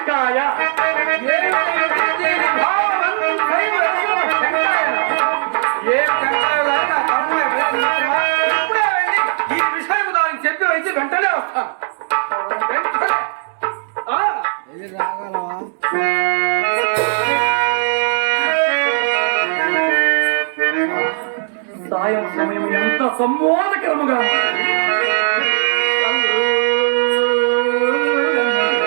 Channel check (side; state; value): left; silent; digital silence